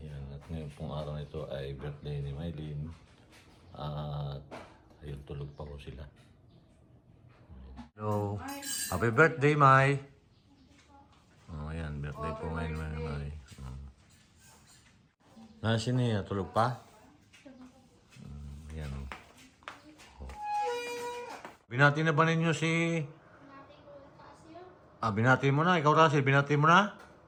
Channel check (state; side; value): identical; both; correlation 1.00